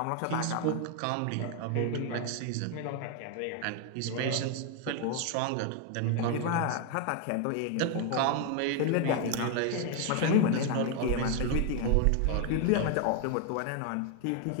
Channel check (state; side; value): different; both; correlation 0.01